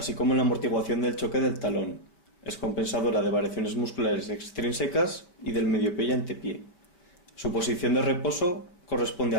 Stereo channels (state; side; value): late; right; 5.2 ms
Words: como en la amortiguación del choque del talón. Es compensadora de variaciones musculares extrínsecas y del mediopié y antepié. Su posición de reposo corresponde